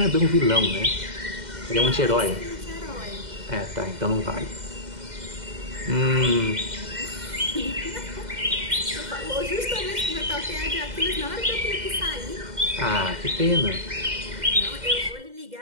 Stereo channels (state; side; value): late; left; 2.1 ms